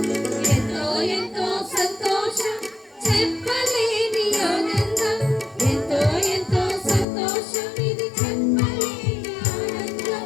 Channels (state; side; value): drops out; right; at 7.1 s